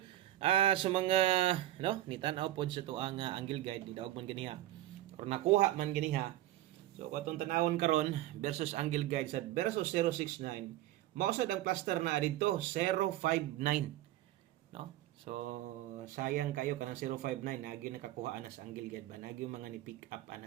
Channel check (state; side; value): quieter; left; 14.5 dB